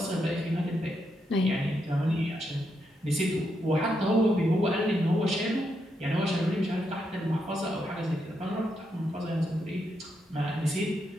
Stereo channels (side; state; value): both; normal; correlation 0.81